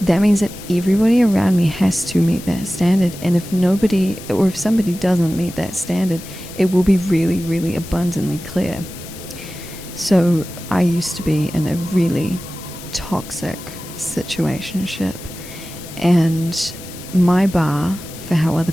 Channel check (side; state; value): left; noise; hiss, 15 dB below the sound